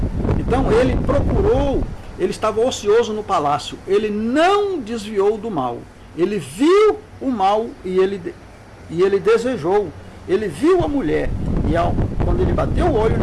Então ele estava ocioso no palácio, ele não desviou do mal, ele viu o mal e ele desejou, ele viu a mulher, e quando ele bateu o olho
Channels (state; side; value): identical; both; correlation 1.00